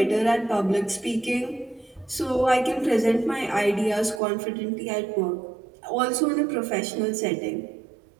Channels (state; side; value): drops out; left; at 4.2 s